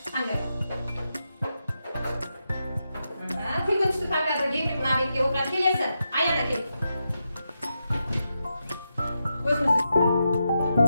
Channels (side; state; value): both; inverted; correlation -0.86